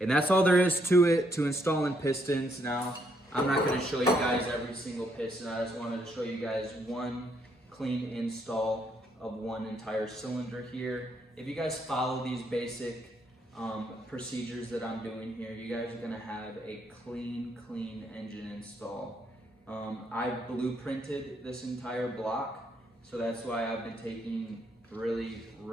And that's all there is to it, to installing pistons. Now, I'm not going to show you guys every single piston. I just wanted to show you guys one clean install of one entire cylinder here. If you guys follow these basic procedures that I'm doing here, you guys are going to have a clean engine install. I blueprinted this entire block, so that's why I've been taking really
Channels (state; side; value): normal; both; correlation 0.73